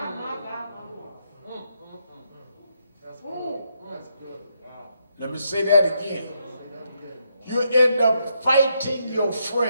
Let me say that again. You end up fighting your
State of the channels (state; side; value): inverted; both; correlation -0.79